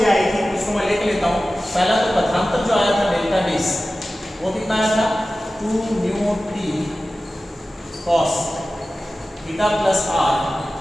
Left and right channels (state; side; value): normal; both; correlation 0.95